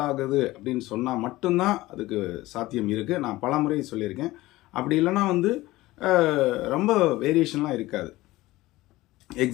ஆகுது அப்படின்னு சொன்னால் மட்டும்தான் அதுக்கு சாத்தியம் இருக்குது. நான் பல முறை சொல்லியிருக்கேன். அப்படி இல்லைன்னா வந்து ரொம்ப வேரியேஷன்லாம் இருக்காது.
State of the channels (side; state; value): right; quieter; 18.2 dB